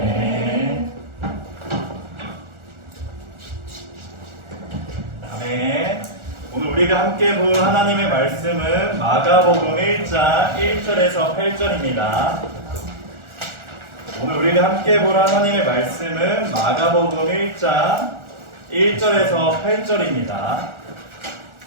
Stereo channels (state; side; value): late; left; 1.4 ms